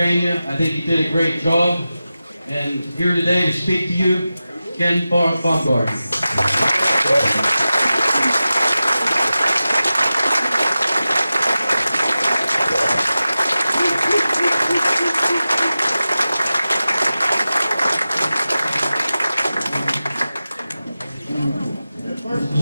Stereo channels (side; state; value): both; inverted; correlation -0.94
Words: I think he did a great job. And here today to speak to you, Ken Baumgardner.